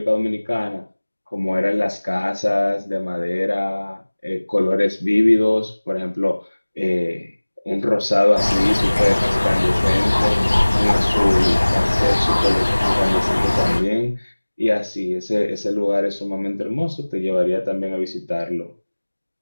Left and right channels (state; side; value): inverted; both; correlation -1.00